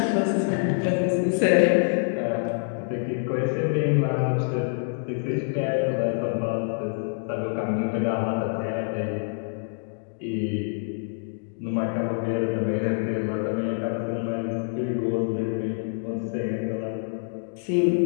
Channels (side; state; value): right; silent; digital silence